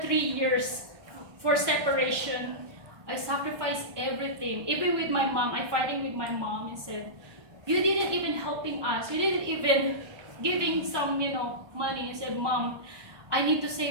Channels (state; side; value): late; left; 1.2 ms